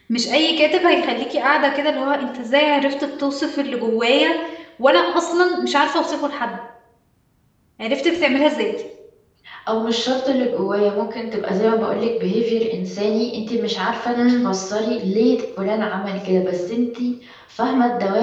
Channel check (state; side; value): identical; both; correlation 1.00